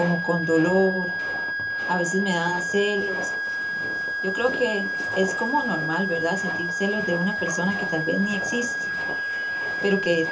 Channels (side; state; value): both; identical; correlation 1.00